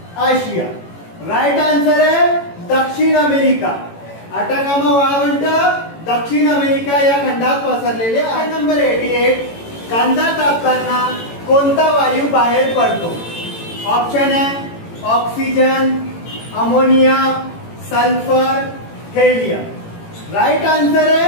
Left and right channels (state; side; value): late; right; 18 ms